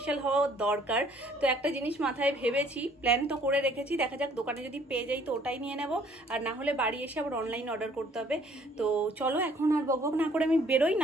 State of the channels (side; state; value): both; normal; correlation 0.59